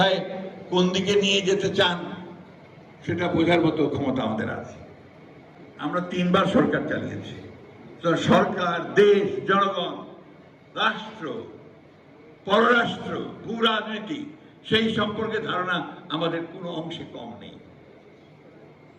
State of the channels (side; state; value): both; identical; correlation 1.00